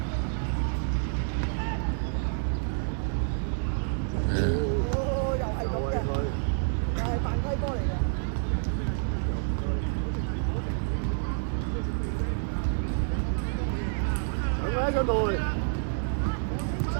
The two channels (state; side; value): silent; left; digital silence